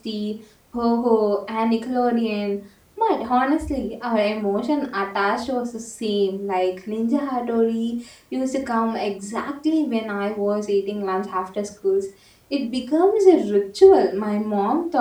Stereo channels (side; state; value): both; identical; correlation 1.00